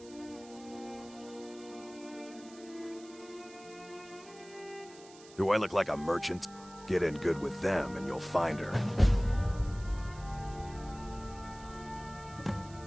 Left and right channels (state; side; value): noise; right; hiss, 21 dB below the sound